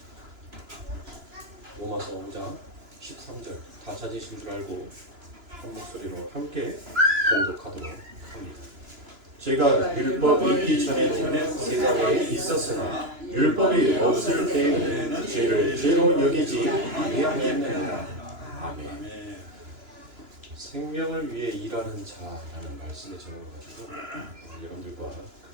로마서 5장 13절 다 찾으신 줄 알고 한 목소리로 함께 봉독하도록 합니다. 제가 율법이 있기 전에 세상에 있었으나 율법이 없을 때에는 죄를 죄로 여기지 아니하였느니라. 아멘. 생명을 위해 일하는 자라는 말씀의 제목을 가지고 여러분들과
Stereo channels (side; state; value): left; late; 2.9 ms